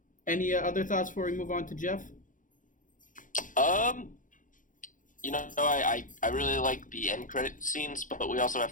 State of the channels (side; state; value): right; late; 0.38 ms